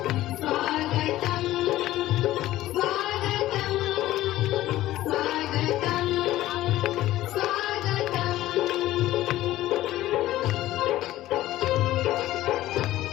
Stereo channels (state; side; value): quieter; right; 15.3 dB